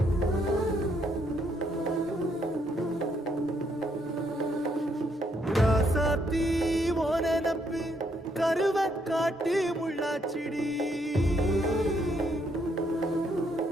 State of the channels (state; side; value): normal; both; correlation 0.73